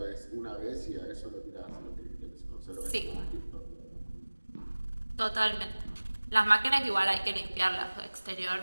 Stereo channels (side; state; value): both; inverted; correlation -1.00